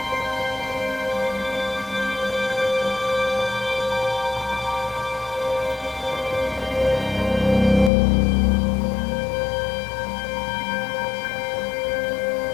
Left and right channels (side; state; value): right; drops out; at 7.9 s